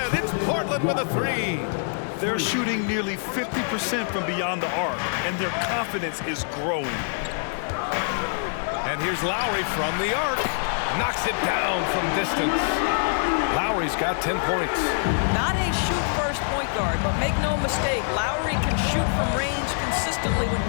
it's Portland with a 3. They're shooting nearly 50% from beyond the arc, and their confidence is growing. And here's Lowry from the arc. Knocks it down from distance. Lowry's got 10 points. Not a shoot-first point guard, but make no mistake, Lowry can shoot from range consistently when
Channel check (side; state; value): right; silent; digital silence